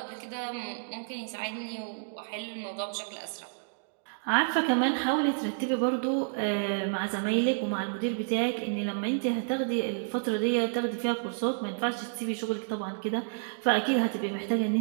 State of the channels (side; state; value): left; silent; digital silence